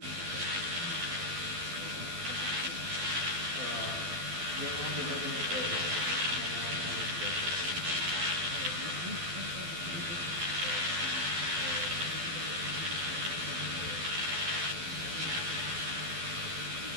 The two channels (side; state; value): left; late; 12 ms